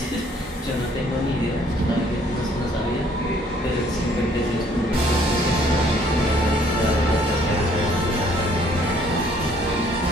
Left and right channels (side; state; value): both; normal; correlation 0.62